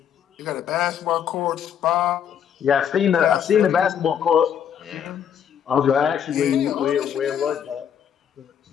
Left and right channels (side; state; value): right; quieter; 8.6 dB